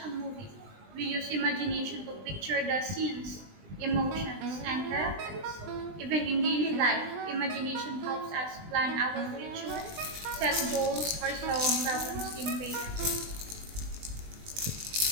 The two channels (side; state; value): left; late; 20 ms